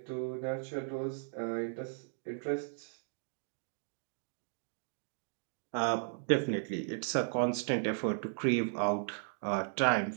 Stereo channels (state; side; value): silent; left; digital silence